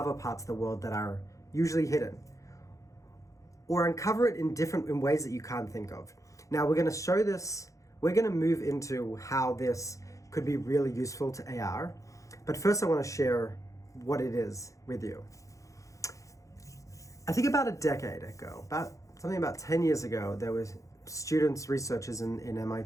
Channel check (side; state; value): right; late; 0.15 ms